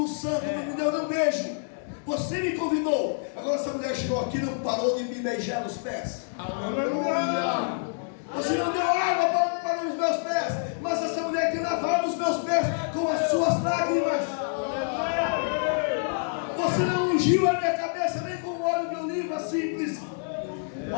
santo, não me deu nem um beijo. Você me convidou. Agora essa mulher chegou aqui e não parou de me beijar nos pés. Aleluia. Você não deu água para os meus pés, mas essa mulher tem lavado os meus pés com as suas lágrimas. Você não ungiu a minha cabeça nem com óleo de oliva simples,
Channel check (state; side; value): silent; right; digital silence